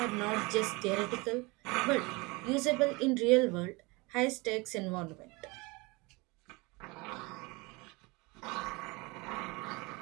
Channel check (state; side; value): quieter; left; 25.5 dB